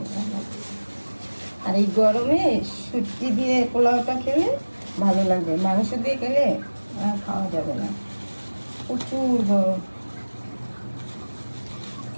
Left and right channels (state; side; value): inverted; both; correlation -1.00